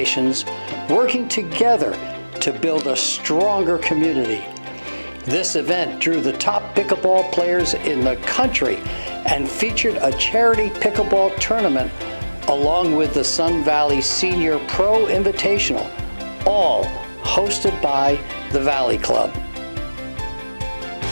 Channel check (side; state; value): both; inverted; correlation -1.00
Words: working together to build a stronger community. This event drew the top pickleball players in the country and featured a charity pickleball tournament along with the Sun Valley Senior Pro Invitational, all hosted by the Valley Club.